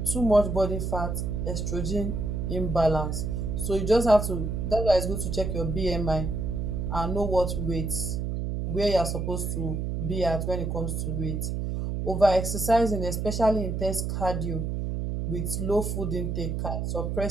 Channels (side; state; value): right; noise; hum, 2 dB below the sound